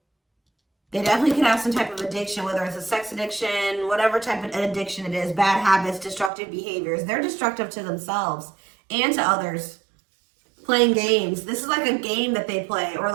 They definitely could have some type of addiction, whether it's a sex addiction, whatever type of addiction it is, bad habits, destructive behaviors. They're destructive to themselves and to others. Playing games. This is like a game that they play, or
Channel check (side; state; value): left; drops out; at 6.3 s